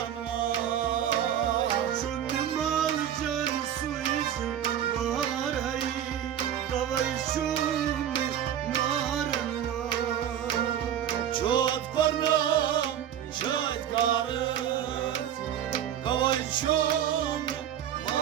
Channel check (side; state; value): left; quieter; 10.1 dB